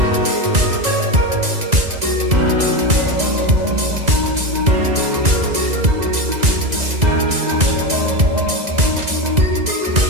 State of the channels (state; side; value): late; left; 2.0 ms